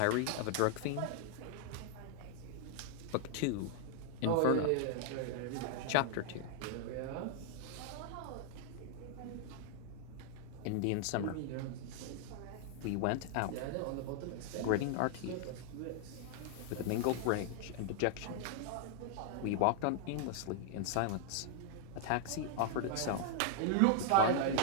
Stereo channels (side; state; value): both; different; correlation 0.00